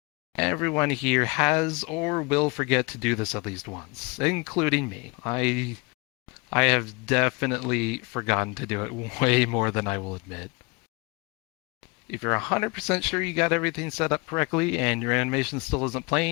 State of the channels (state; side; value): quieter; right; 27.9 dB